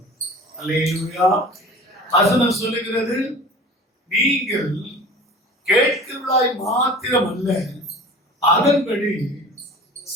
அல்லேலூயா. வசனம் சொல்லுகிறது, நீங்கள் கேட்கிறவர்களாய் மாத்திரம் அல்ல, அதன்படி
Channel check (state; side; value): normal; both; correlation 0.40